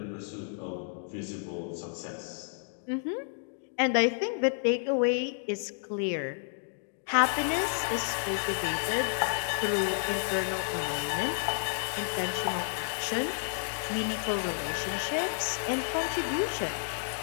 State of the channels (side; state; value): right; silent; digital silence